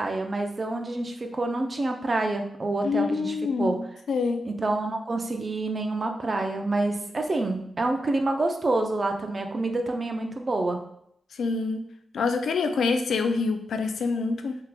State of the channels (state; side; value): normal; both; correlation 0.85